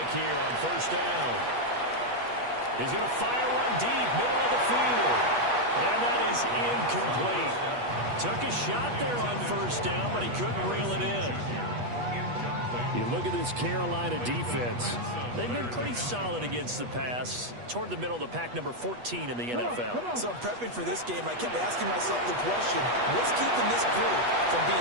here on 1st down. He's going to fire one deep, middle of the field. And that is incomplete. Took a shot there on 1st down, but he couldn't reel it in. You look at this Carolina defense. They've been pretty solid against the pass. Toward the middle of the pack, number 14 in the NFL. So I'm prepping for this game. I kept asking myself the question, what's keeping this group from being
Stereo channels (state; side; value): late; left; 8.3 ms